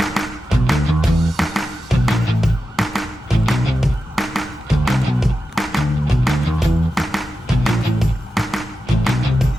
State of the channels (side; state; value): both; normal; correlation 0.91